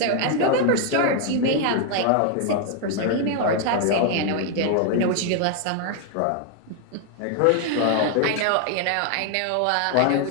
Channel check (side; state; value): both; different; correlation 0.00